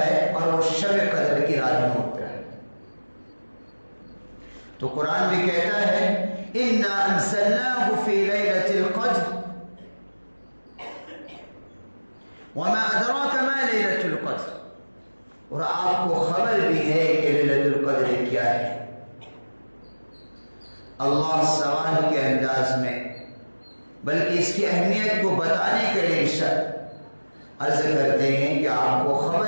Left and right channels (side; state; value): both; inverted; correlation -1.00